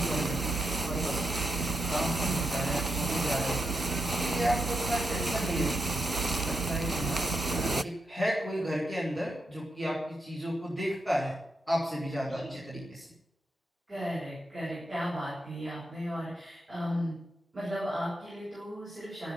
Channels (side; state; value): both; normal; correlation 0.85